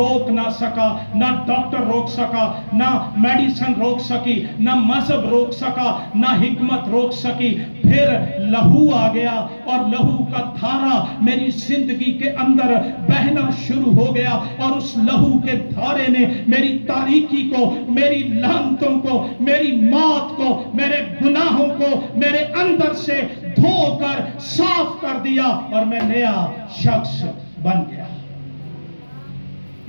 نہ سکا، نہ ڈاکٹر روک سکا، نہ میڈیسن روک سکی، نہ مذہب روک سکا، نہ حکمت روک سکی۔ پھر لہو آ گیا اور لہو کا دھارا میری زندگی کے اندر بہنا شروع ہو گیا، اور اس لہو کے دھارے نے میری تاریکی کو، میری لعنتوں کو، میری موت کو، میرے گناہوں کو میرے اندر سے دھو کر صاف کر دیا اور میں نیا شخص بن گیا۔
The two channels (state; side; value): inverted; both; correlation -1.00